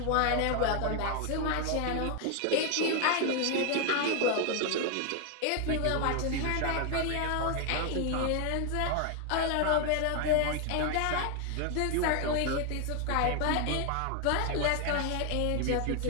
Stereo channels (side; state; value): both; different; correlation 0.00